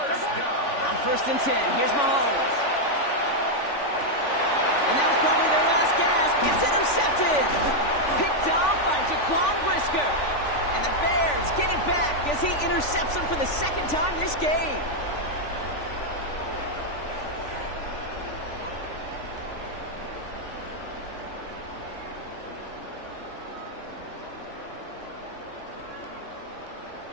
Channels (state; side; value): late; right; 3.5 ms